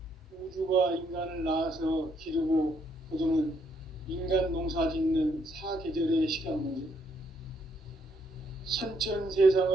우주가 인간을 낳아서 기르고 거두는 인간 농사 짓는 사계절의 시간 문제. 선천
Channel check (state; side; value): normal; both; correlation 0.72